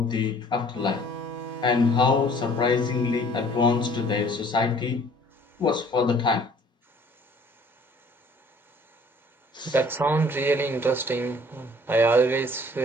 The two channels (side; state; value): both; normal; correlation 0.55